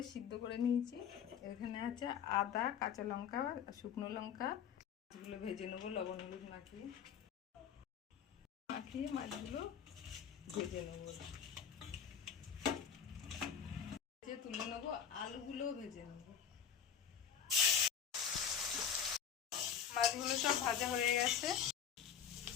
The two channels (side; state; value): right; quieter; 8.1 dB